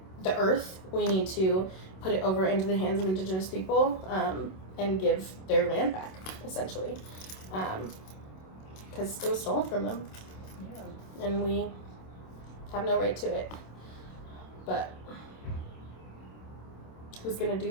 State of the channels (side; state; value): right; late; 27 ms